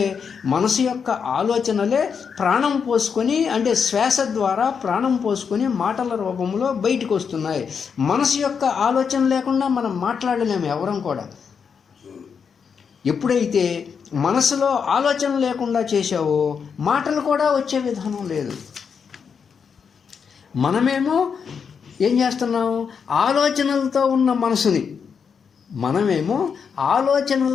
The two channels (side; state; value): right; quieter; 6.4 dB